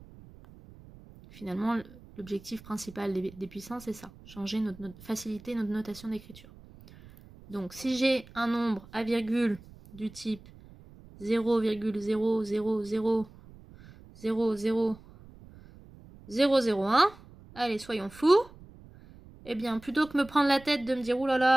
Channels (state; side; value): noise; right; rumble, 21 dB below the sound